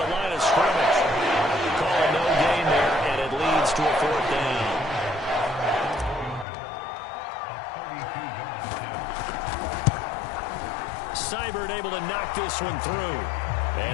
the line of scrimmage. Calling no gain there, and it leads to a 4th down. Seibert able to knock this one through.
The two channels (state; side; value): drops out; right; at 6.5 s